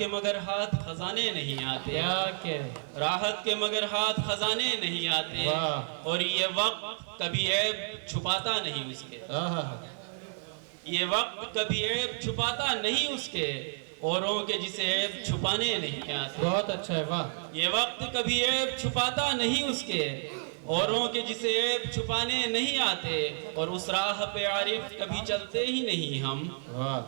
مگر ہاتھ خزانے نہیں آتے، کیا کہہ، راحت کے مگر ہاتھ خزانے نہیں آتے، واہ، اور یہ وقت کبھی عیب چھپاتا نہیں اس کے، آہا، یہ وقت کبھی عیب چھپاتا نہیں اس کے، اوروں کے جسے عیب چھپانے نہیں آتے، بہت اچھا ہے، واہ، یہ وقت کبھی عیب چھپاتا نہیں اس کے، اوروں کے جسے عیب چھپانے نہیں آتے، اور اس راہ پہ عارف کبھی چلتے ہی نہیں ہم،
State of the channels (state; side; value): silent; left; 57 dB below the other